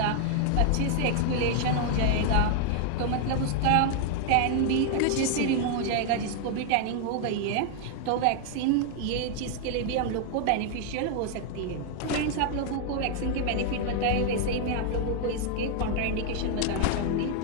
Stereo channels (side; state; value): both; different; correlation 0.00